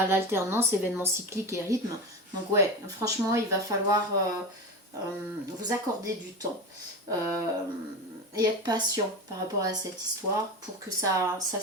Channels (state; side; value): normal; both; correlation 0.24